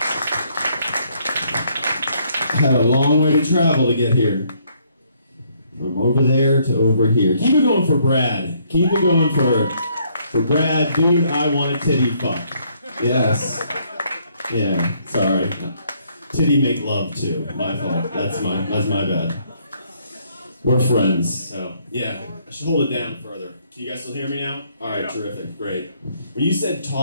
Had a long way to travel to get here. From over there to over here. Keep it going for Brad. Keep it going for Brad. Dude, I want a titty fuck. Yes. Yeah, sorry. Titty make love too. My fault. That's my bad. We're friends, so yeah. I should hold it down further. Can you guys still hear me now? Alright, yeah. Terrific, great. When you said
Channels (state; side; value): inverted; both; correlation -0.68